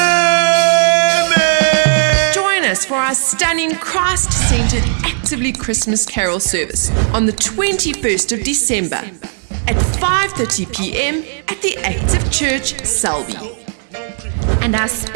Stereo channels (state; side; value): silent; left; digital silence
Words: Join us for our stunning Christ-centered Actively Christmas Carol service on the 21st of December at 5:30 p.m. at the Active Church, Selby. And our